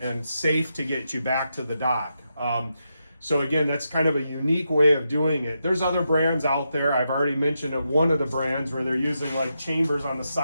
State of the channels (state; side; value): inverted; both; correlation -0.84